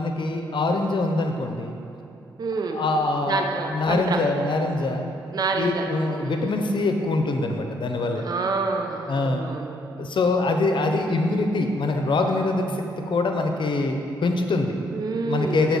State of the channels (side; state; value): both; normal; correlation 0.68